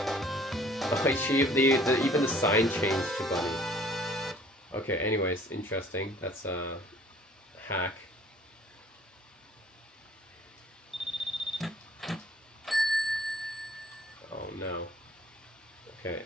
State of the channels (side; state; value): both; normal; correlation 0.54